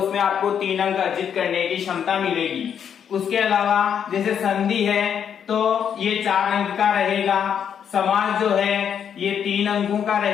आपको 3 अंक अर्जित करने की क्षमता मिलेगी। उसके अलावा जैसे संधि है तो ये 4 अंक का रहेगा, समास जो है ये 3 अंकों का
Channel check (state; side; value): quieter; right; 8.2 dB